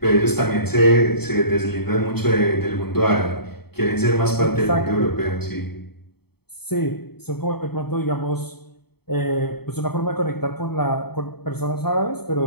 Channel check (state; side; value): late; right; 0.96 ms